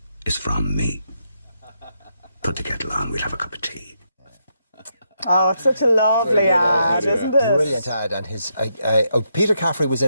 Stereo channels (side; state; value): both; inverted; correlation -0.80